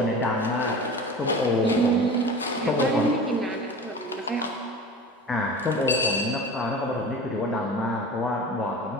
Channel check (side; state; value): both; normal; correlation 0.35